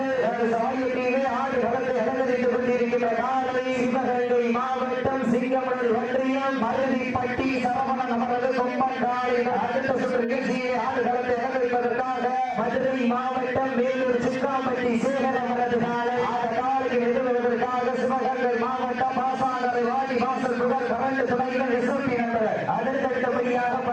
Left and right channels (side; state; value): both; identical; correlation 1.00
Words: சாயத்திலே ஆடு வளர்ந்து அலங்கரித்துக் கொண்டிருக்கின்ற காலை சிவகங்கை மாவட்டம் சிங்கமணல் ஒன்றியம் மருதிப்பட்டி சரவணன் அவரது கொம்பன் காலை அடுத்த சுற்று நிகழ்ச்சியை ஆடு வளர்ந்து அலங்கரிப்பதற்காக மதுரை மாவட்டம் வேலூர் சிக்காம்பட்டி சேகர் அவரது காலை அந்த காலையில் எதிர்வதற்காக சிவகங்கை மாவட்டம் பாசாங்கரை வாடி வாசல் புகழ் கரண்டு துணைகள் எஸ்எம்பி நண்பர் அடுத்தடுத்தபடியாக